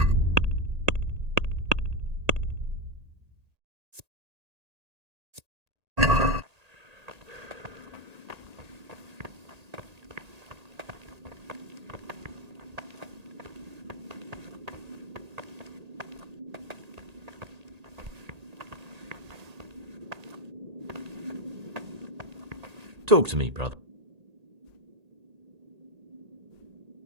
Talk to me, brother.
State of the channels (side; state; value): left; late; 1.8 ms